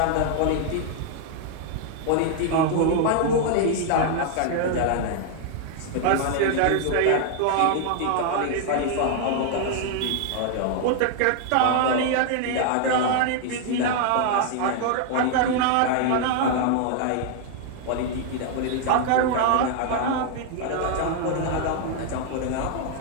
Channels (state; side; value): different; both; correlation 0.00